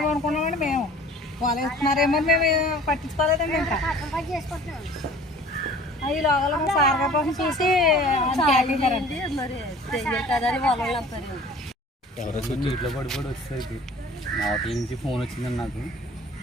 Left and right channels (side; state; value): both; normal; correlation 0.47